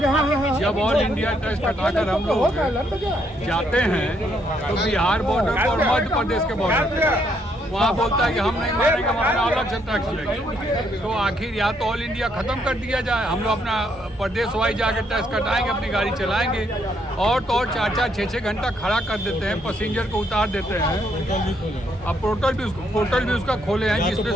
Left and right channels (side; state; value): both; normal; correlation 0.73